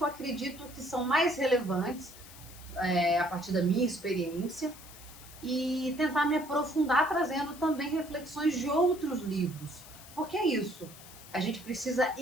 eu acredito que são mais relevantes a partir da minha experiência e tentar me aprofundar trazendo também reflexões de outros livros. Porque é isso, a gente precisa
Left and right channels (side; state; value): left; noise; hiss, 18 dB below the sound